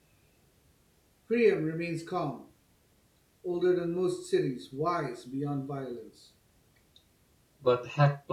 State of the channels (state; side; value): identical; both; correlation 1.00